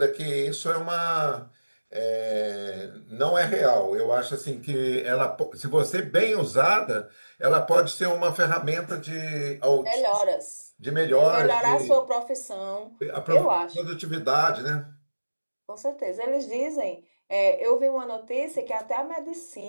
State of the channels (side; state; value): both; inverted; correlation -1.00